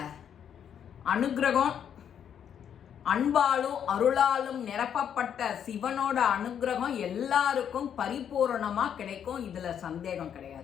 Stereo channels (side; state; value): right; quieter; 8.7 dB